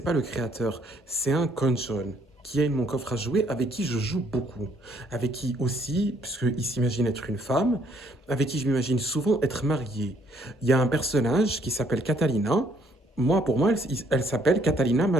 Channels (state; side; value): normal; both; correlation 0.66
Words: le créateur. C'est un cône jaune qui est mon coffre à jouer, avec qui je joue beaucoup. Avec qui aussi, puisqu'il s'imagine être une femme, avec qui je m'imagine souvent être marié. Il y a un personnage qui s'appelle Catalina. Moi, pour moi, elle s'appelle Catalina